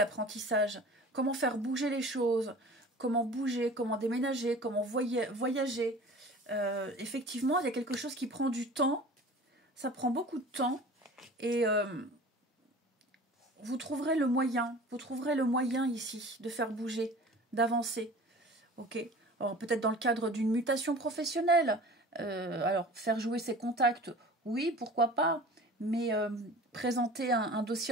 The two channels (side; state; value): both; normal; correlation 0.41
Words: Comment faire bouger les choses. Comment bouger, comment déménager, comment voyager. Effectivement, il y a quelque chose qui prend du temps. Ça prend beaucoup de temps. Et... vous trouverez le moyen ici de faire bouger, d'avancer. Ok. Alors peut-être dans le cadre d'une mutation professionnelle. Alors faire jouer ses contacts, oui, pourquoi pas. Mais présenter un